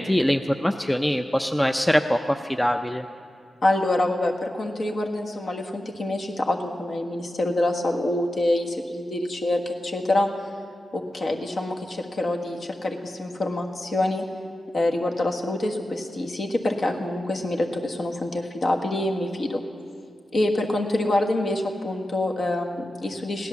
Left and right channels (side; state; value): both; normal; correlation 0.92